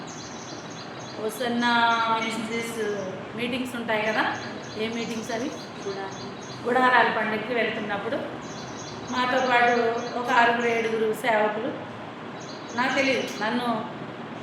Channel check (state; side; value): identical; both; correlation 1.00